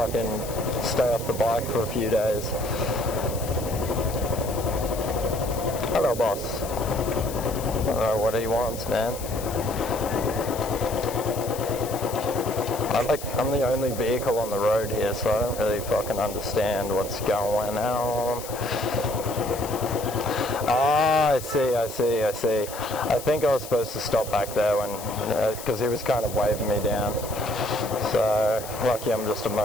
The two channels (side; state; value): left; noise; hiss, 12 dB below the sound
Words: stay off the bike for a few days. Hello, boss. I don't know what he wants, man. I'm the only vehicle on the road here, so I don't really fucking understand what's going on. Ah, I see. I think I was supposed to stop back there when, because he was kind of waving me down. So, lucky I'm just a